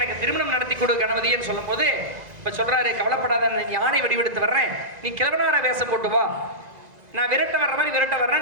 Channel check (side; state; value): left; late; 2.0 ms